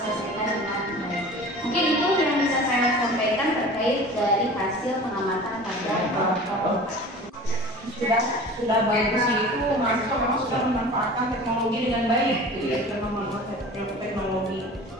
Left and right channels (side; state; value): both; normal; correlation 0.40